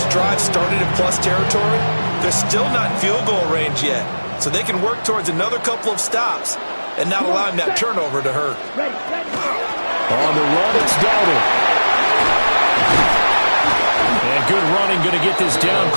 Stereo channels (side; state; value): both; inverted; correlation -1.00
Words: drive started in plus territory, they're still not in field goal range yet. So they can work towards another couple of stops and not allowing that turnover to hurt. On the run, it's Dowdle. And good running, going to get this down